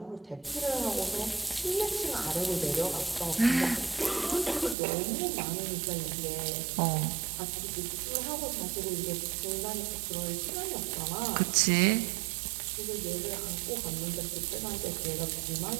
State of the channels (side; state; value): left; drops out; at 4.8 s